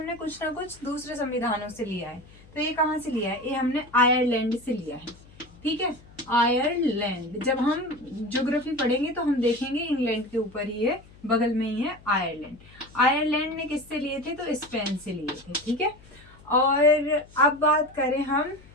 कुछ ना कुछ दूसरे संविधानों से लिया है। तो ये कहाँ से लिया है? ये हमने आयरलैंड से लिया है, ठीक है। आयरलैंड, जब हम ज्योग्राफी पढ़ेंगे तो हम देखेंगे इंग्लैंड के ऊपर ही है, बगल में ही है आयरलैंड। आयरलैंड ने किससे लिए थे? तो स्पेन से लिए थे, ठीक है। और अब बात करें हम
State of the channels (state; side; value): noise; left; hum, 24 dB below the sound